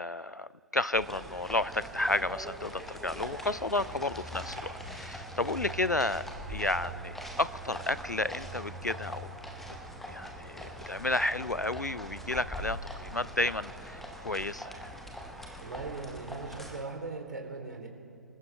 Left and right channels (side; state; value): both; normal; correlation 0.36